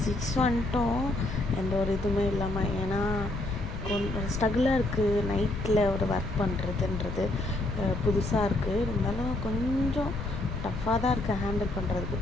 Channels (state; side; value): noise; left; rumble, 6 dB below the sound